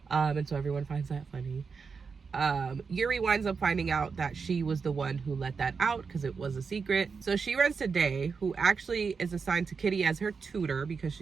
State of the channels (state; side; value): quieter; left; 5.3 dB